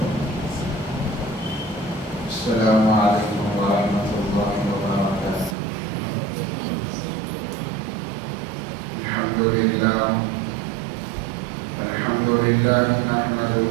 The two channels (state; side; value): drops out; left; at 5.6 s